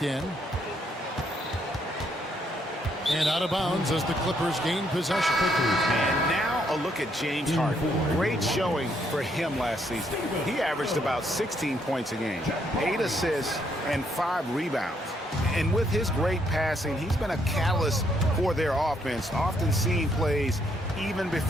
in. And out of bounds as the Clippers gain possession. And now a look at James Harden. Great showing for him last season. He averaged about 16 points a game, 8 assists, and 5 rebounds. And with his great passing, he's been a catalyst for their offense, often seeing plays even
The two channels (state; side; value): normal; both; correlation 0.72